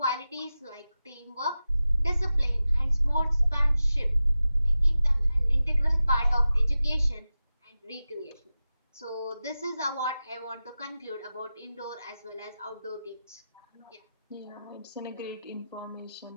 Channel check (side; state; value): both; inverted; correlation -0.93